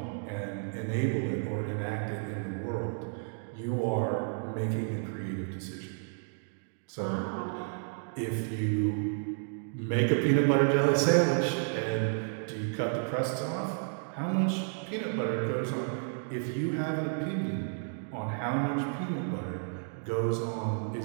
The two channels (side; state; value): left; silent; 57 dB below the other